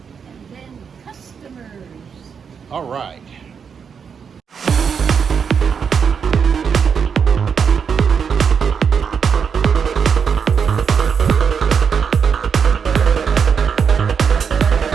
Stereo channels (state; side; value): quieter; left; 6.6 dB